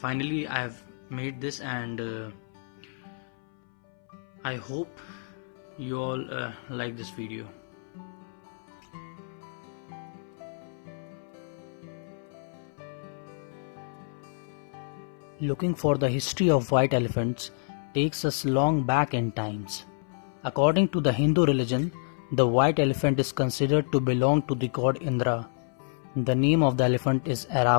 finally I have made this, and I hope you all like this video. Looking for the history of white elephants takes us long back in times. According to the Hindu religion, the white elephant is considered to belong to the god Indra. The name of the elephant is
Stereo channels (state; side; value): silent; right; 59 dB below the other